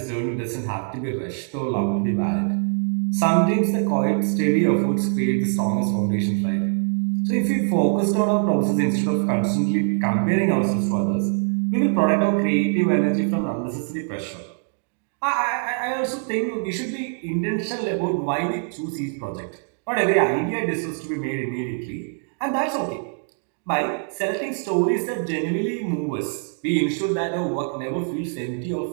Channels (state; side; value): silent; left; 57 dB below the other